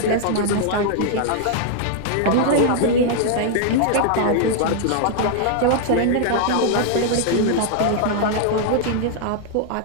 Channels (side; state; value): both; different; correlation -0.01